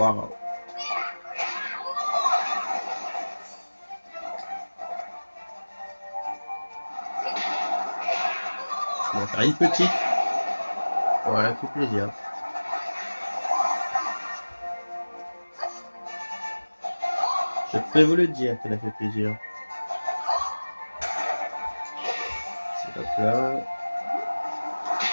On va faire une petite. Voilà, fait plaisir. Je peux vous le dire qu'elle a fait plaisir. Hop là.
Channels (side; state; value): both; inverted; correlation -1.00